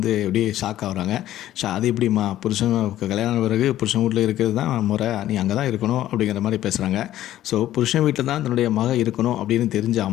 அப்படியே ஷாக் ஆகுறாங்க. அது எப்படிம்மா? புருஷன் கல்யாணம் ஆன பிறகு புருஷன் வீட்ல இருக்கிறது தான் முறை. நீ அங்கே தான் இருக்கணும் அப்படிங்கிற மாரி பேசுகிறாங்க. ஸோ புருஷன் வீட்டில் தான் தன்னுடைய மக இருக்கணும் அப்படின்னு தெரிஞ்ச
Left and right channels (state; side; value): quieter; right; 13.3 dB